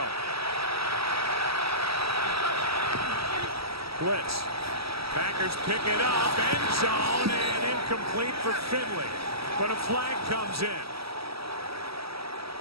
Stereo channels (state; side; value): late; left; 0.76 ms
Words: Blitz. Packers pick it up. End zone and incomplete for Finley. But a flag comes in.